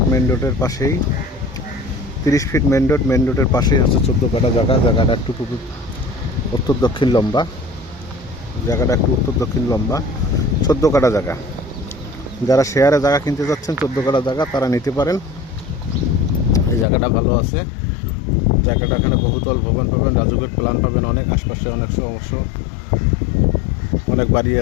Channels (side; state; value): right; drops out; at 16.9 s